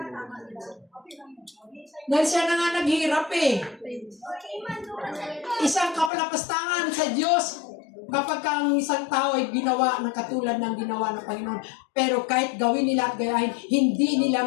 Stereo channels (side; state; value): right; drops out; at 6.1 s